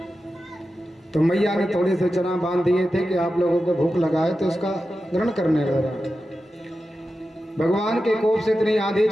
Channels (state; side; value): normal; both; correlation 0.92